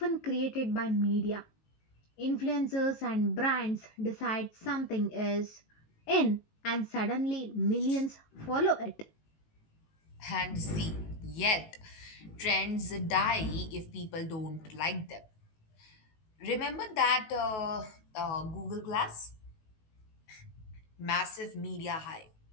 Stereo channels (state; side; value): late; right; 19 ms